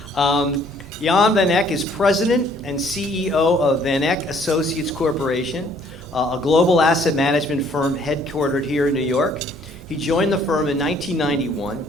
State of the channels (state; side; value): normal; both; correlation 0.61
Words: Jan van Eck is president and CEO of Eck Associates Corporation, a global asset management firm headquartered here in New York. He joined the firm in 1991,